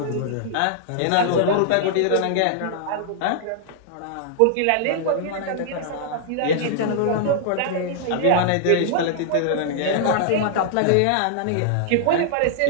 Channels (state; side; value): different; both; correlation -0.01